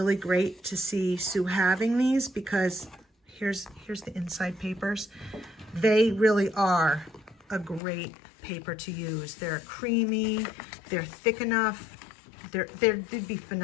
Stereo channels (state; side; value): drops out; right; at 7.8 s